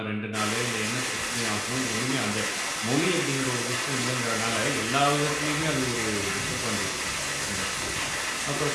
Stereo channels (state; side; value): identical; both; correlation 1.00